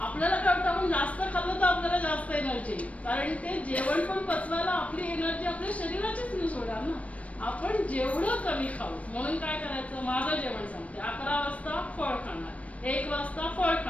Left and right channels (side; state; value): right; late; 0.065 ms